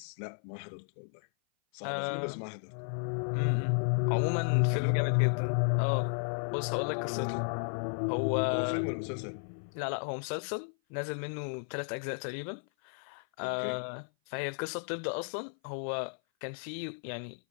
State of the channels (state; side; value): silent; right; 55 dB below the other